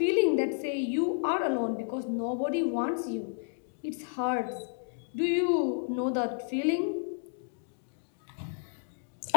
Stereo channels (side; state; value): right; silent; digital silence